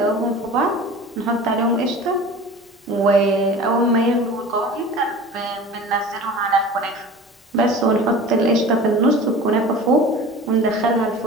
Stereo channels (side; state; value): both; normal; correlation 0.38